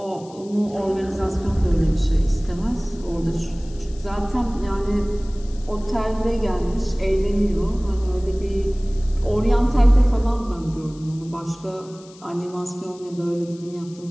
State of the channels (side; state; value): left; noise; hiss, 24 dB below the sound